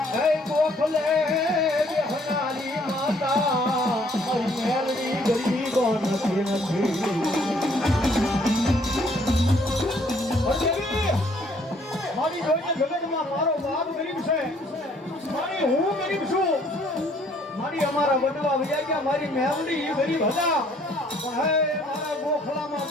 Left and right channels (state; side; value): normal; both; correlation 0.62